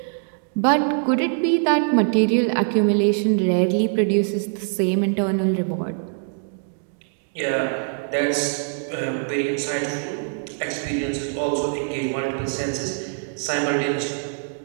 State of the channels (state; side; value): silent; left; 63 dB below the other